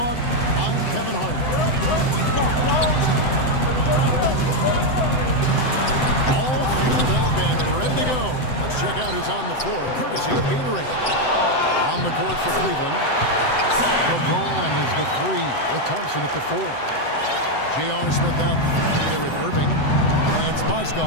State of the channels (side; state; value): right; late; 7.8 ms